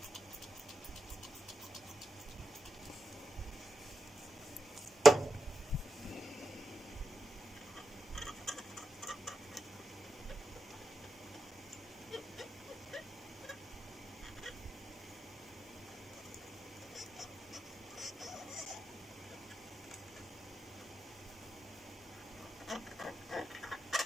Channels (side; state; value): both; normal; correlation 0.88